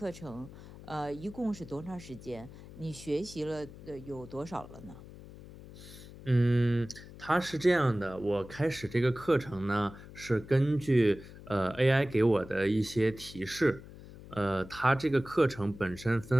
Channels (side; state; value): left; noise; hum, 17 dB below the sound